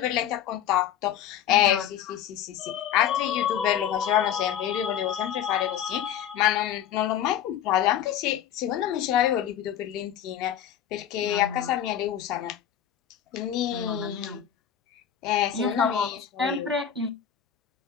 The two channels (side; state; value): right; quieter; 9.8 dB